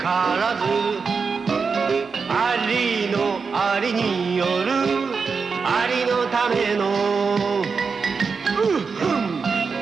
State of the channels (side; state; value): left; quieter; 5.1 dB